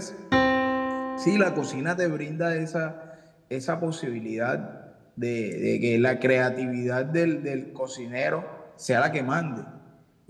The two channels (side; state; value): both; identical; correlation 1.00